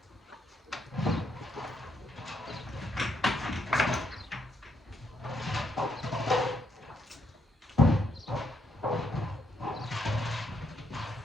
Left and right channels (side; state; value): both; normal; correlation 0.76